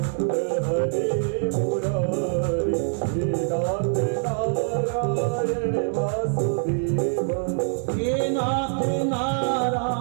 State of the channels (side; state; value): left; silent; digital silence